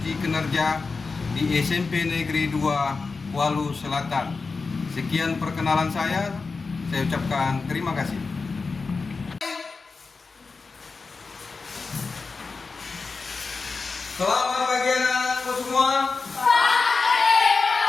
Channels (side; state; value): right; quieter; 4.3 dB